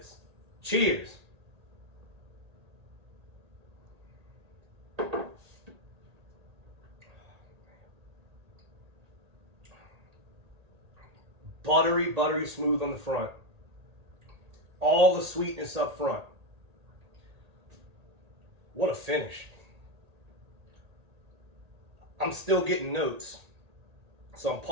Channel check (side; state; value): left; late; 1.8 ms